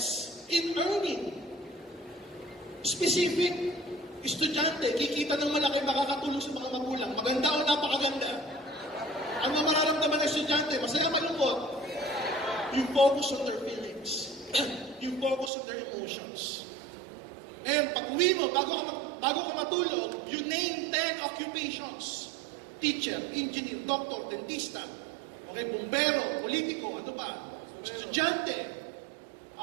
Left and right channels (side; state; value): left; drops out; at 15.5 s